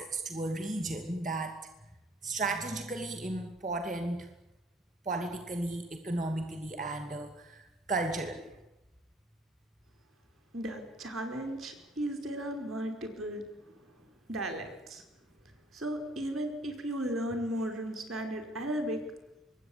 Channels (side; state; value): both; normal; correlation 0.57